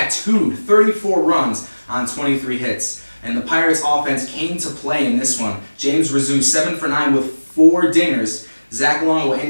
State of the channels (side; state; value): both; inverted; correlation -1.00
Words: 34 runs on 23 hits. And the Pirates offense came to play in this one. James Rizzo 7 for 9 with 4 dingers. Zach Longo